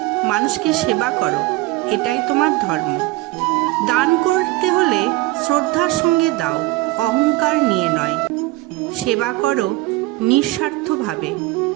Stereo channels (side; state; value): left; quieter; 19.4 dB